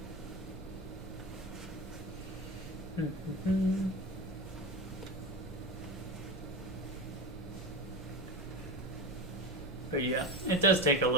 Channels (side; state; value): both; normal; correlation 0.22